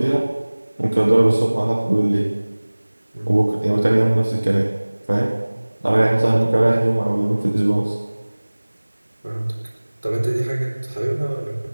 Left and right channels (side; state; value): both; inverted; correlation -1.00